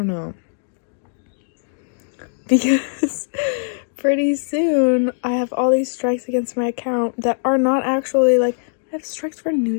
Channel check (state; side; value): silent; right; 65 dB below the other